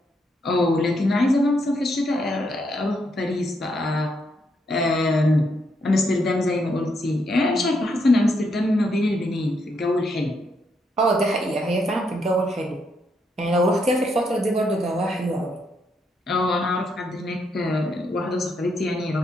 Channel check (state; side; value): normal; both; correlation 0.77